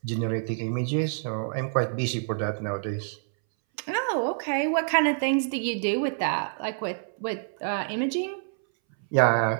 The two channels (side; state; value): left; silent; 60 dB below the other